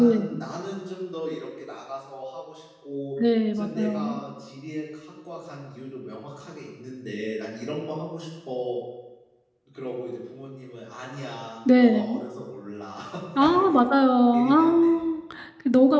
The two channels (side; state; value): both; identical; correlation 1.00